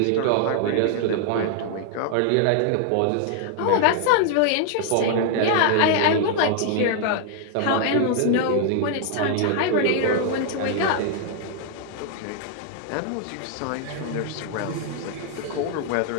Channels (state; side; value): different; both; correlation 0.00